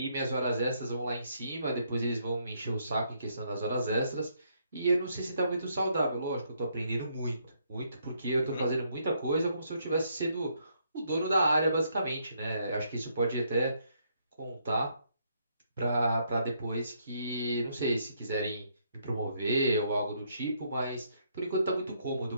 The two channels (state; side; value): inverted; both; correlation -0.72